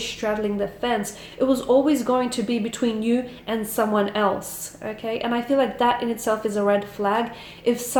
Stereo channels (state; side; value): identical; both; correlation 1.00